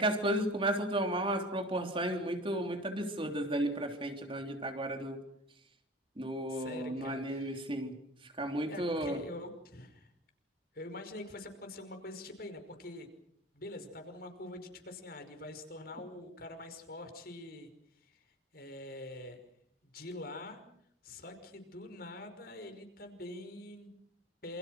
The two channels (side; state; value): both; normal; correlation 0.38